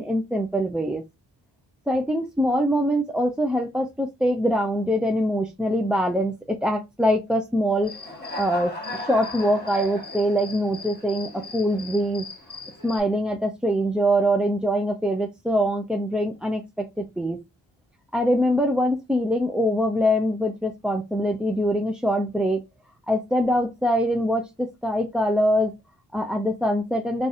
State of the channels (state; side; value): normal; both; correlation 0.78